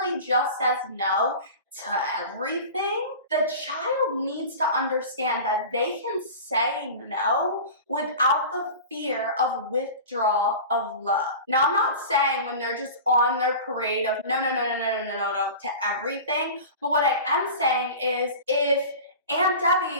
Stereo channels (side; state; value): both; inverted; correlation -0.35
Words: just says no to everything, the child needs to understand that they can say no without the fear of withdrawal of love. Now, I'm not saying when they're just on their parade of no to everything, but what I am saying is if Aunt